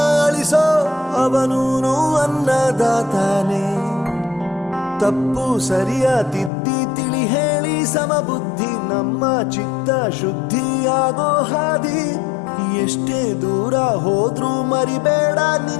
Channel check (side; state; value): right; drops out; at 6.5 s